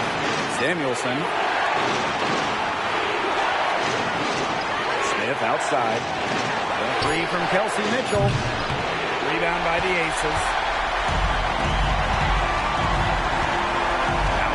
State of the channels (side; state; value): both; identical; correlation 1.00